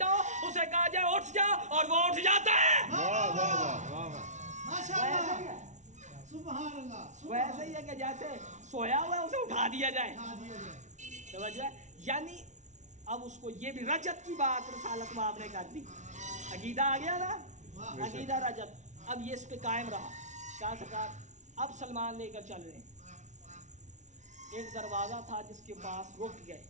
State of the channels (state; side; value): late; left; 0.35 ms